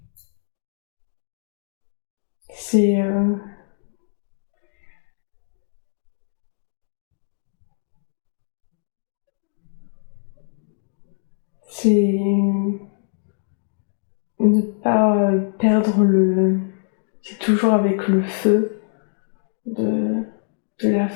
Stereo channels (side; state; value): right; silent; digital silence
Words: C'est ne pas perdre le... C'est toujours avec le feu de la